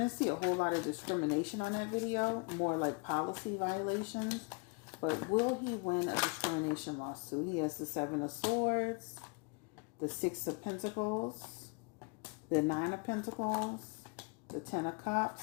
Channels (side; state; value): right; quieter; 32.1 dB